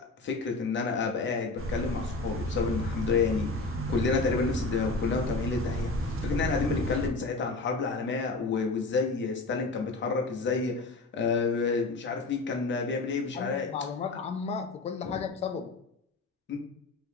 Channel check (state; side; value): quieter; right; 3.5 dB